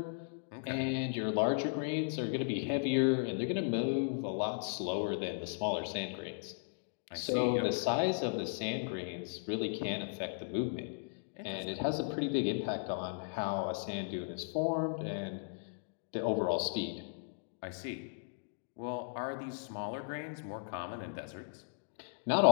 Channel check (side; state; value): right; silent; digital silence